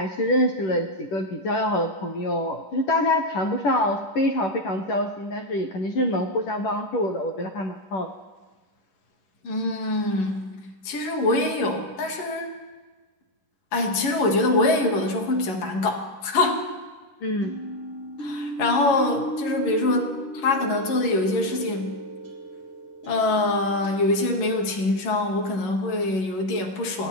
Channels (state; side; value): late; right; 11 ms